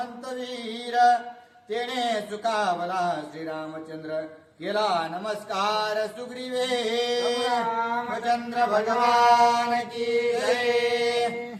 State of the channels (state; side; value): identical; both; correlation 1.00